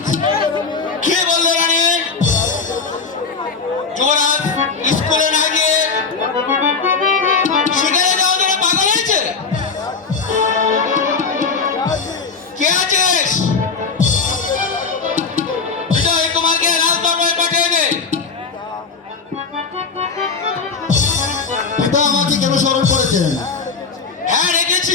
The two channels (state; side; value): quieter; right; 4.9 dB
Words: কে বললে রানী? যুবরাজ স্কুলে না গিয়ে শিকারে যাওয়ার জন্য পাগল হয়েছে? কে আছিস? বিজয় কুমারকে রাজদরবারে পাঠিয়ে দে। পিতা আমাকে কেন স্মরণ করেছেন? হ্যাঁ,